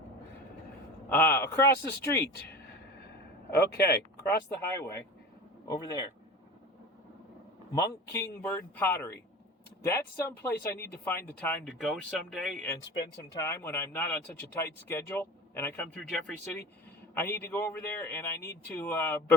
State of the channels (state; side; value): normal; both; correlation 0.34